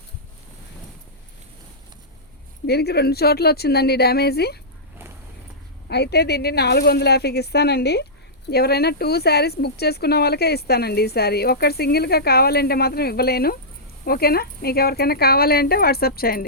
దీనికి 2 చోట్ల వచ్చిందండి డ్యామేజీ. అయితే దీన్ని 450కి ఇస్తానండి. ఎవరైనా 2 శారీస్ బుక్ చేసుకున్న వాళ్ళకే ఇస్తానండి ఈ శారీ. ఒకటి సింగిల్గా కావాలంటే మాత్రం ఇవ్వలేను. ఓకేనా? మీకు ఎవరికైనా కావాలి అంటే వాట్సాప్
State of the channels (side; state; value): both; normal; correlation -0.15